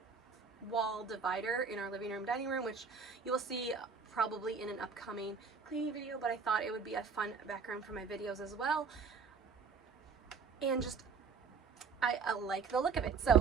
wall divider in our living room dining room, which you will see probably in an upcoming cleaning video, but I thought it would be a fun background for my videos as well. And just I like the look of it,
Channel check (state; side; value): quieter; left; 5.5 dB